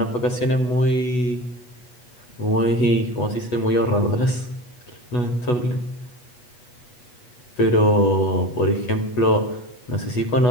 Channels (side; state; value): right; late; 8.3 ms